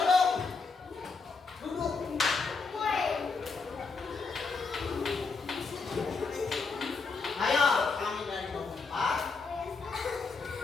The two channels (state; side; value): quieter; right; 4.5 dB